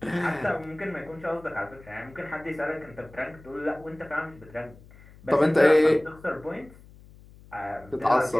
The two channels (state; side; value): noise; left; hum, 22 dB below the sound